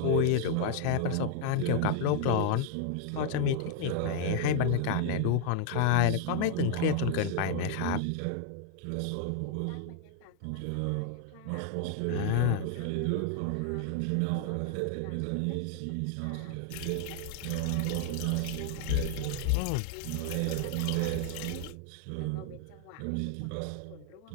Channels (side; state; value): both; different; correlation 0.00